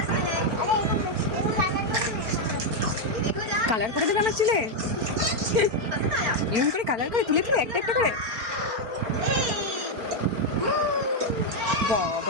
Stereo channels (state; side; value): late; left; 4.4 ms